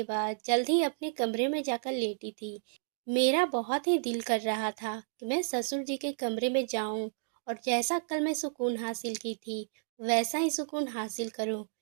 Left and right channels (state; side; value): silent; left; digital silence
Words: बाद जल्द ही अपने कमरे में जाकर लेटी थी। मेरा बहुत ही दिल कर रहा था कि मैं ससुर जी के कमरे में जाऊं और जैसा कल मैं सुकून हासिल की थी, वैसा ही सुकून हासिल करूं।